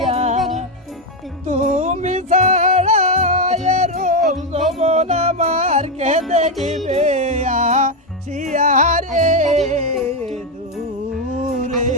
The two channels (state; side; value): normal; both; correlation 0.06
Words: তুমি ছাড়া এরম যমন আমার কে দেখিবে আসিয়ারে দূরে